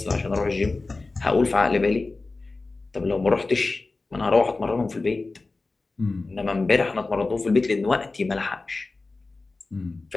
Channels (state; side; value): quieter; right; 3.5 dB